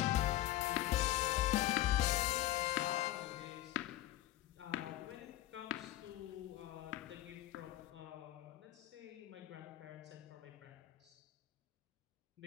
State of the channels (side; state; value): right; quieter; 14.6 dB